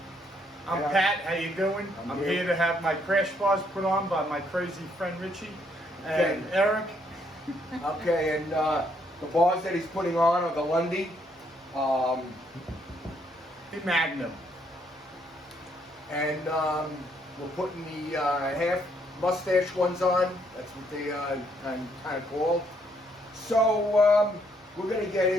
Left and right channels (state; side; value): normal; both; correlation 0.71